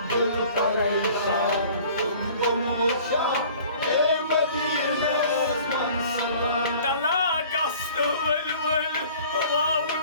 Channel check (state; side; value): inverted; both; correlation -0.49